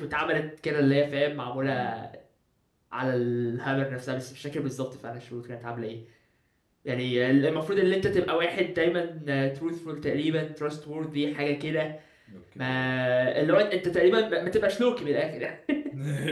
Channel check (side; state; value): both; identical; correlation 1.00